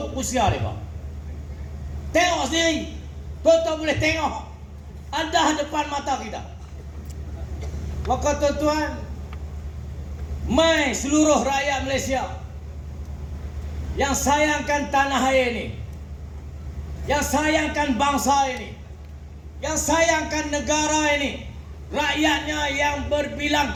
usia mereka. Tengok sendiri, tuan-tuan boleh tengok, ada depan mata kita. Maka tuan-tuan, mai seluruh rakyat Malaysia yang sayangkan tanah air ini, yang sayangkan bangsa ini, yang sayangkan negara ini, rakyatnya yang berbilang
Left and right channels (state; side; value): identical; both; correlation 1.00